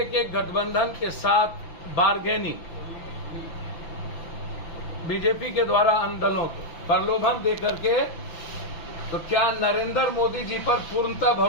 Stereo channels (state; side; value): late; right; 5.9 ms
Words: के गठबंधन के साथ बार्गेनिंग बीजेपी के द्वारा अन्य दलों को प्रलोभन देकर के, तो क्या नरेंद्र मोदी जी पर पूर्णतः